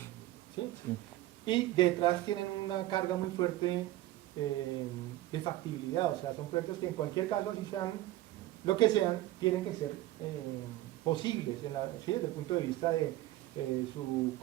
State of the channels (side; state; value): left; quieter; 15.8 dB